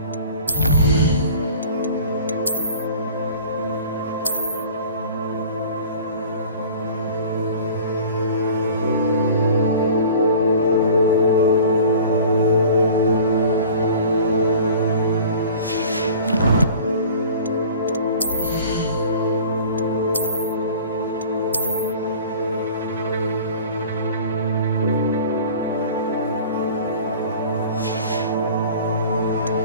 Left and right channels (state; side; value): inverted; both; correlation -0.44